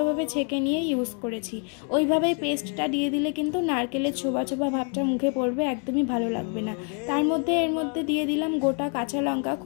ছেঁকে নিয়ে ইউজ করেছি। ওইভাবেই পেস্টটা দিয়ে দিলে কিন্তু নারকেলের ছোবা ছোবা ভাবটা মুখে পড়বে, একদমই ভালো লাগবে না। তার মধ্যে এর মধ্যে দিয়ে দিলাম গোটা কাঁচা লঙ্কা,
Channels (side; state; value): right; quieter; 39.9 dB